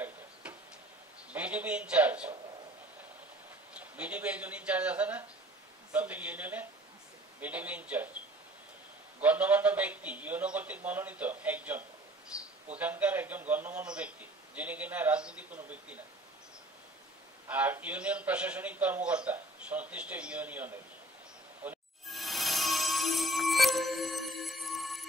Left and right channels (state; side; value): normal; both; correlation 0.52